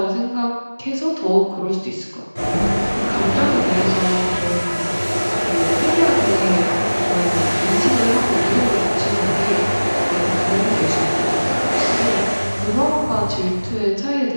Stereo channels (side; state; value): both; inverted; correlation -1.00